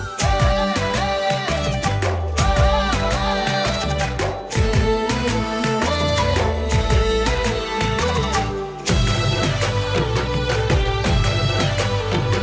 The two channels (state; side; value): identical; both; correlation 1.00